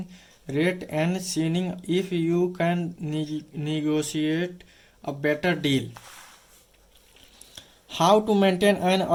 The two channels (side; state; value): both; identical; correlation 1.00